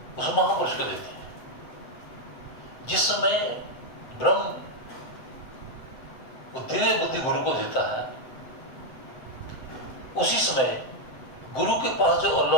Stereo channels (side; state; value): right; late; 7.8 ms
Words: उस महापुरुष को देते हैं। जिस समय ब्रह्म वो दिव्य बुद्धि गुरु को देता है, उसी समय गुरु के पास जो